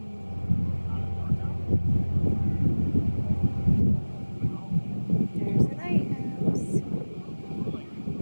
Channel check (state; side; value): inverted; both; correlation -1.00